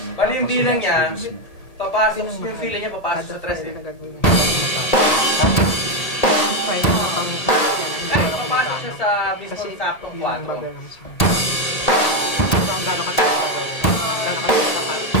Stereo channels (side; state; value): right; late; 1.8 ms